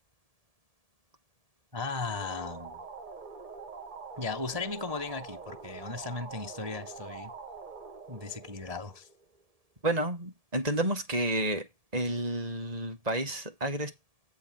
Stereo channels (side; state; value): left; late; 1.7 ms